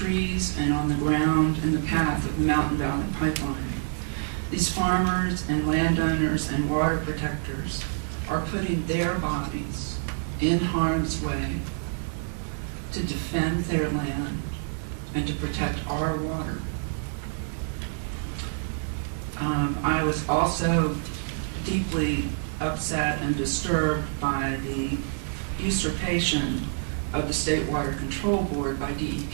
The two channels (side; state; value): left; silent; digital silence